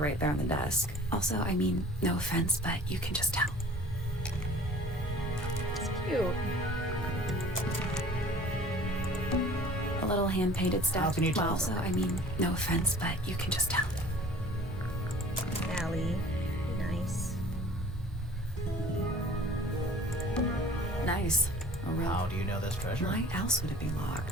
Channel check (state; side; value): normal; both; correlation 0.46